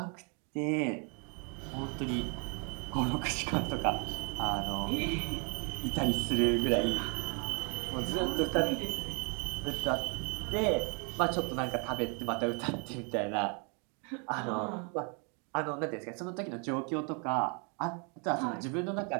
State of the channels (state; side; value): quieter; left; 36.4 dB